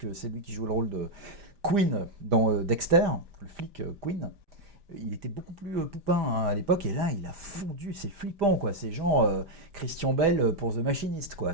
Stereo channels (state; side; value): late; left; 5.0 ms